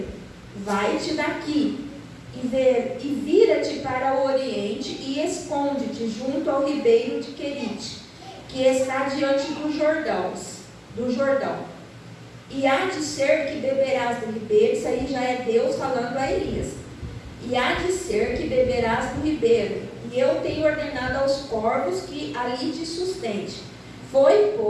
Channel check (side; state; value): both; identical; correlation 1.00